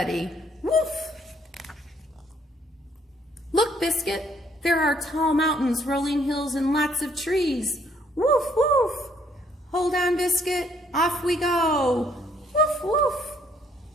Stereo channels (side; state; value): both; normal; correlation 0.66